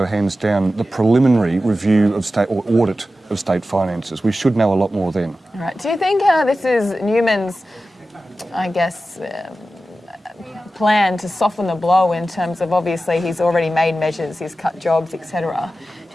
hands down the preliminary review of state or audit of state finances. We should know a lot more then. All right. Do you think this is Newman's, I guess, plan to soften the blow in terms of, obviously he's already made measures, he's cut jobs, etc. Do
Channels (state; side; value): normal; both; correlation 0.94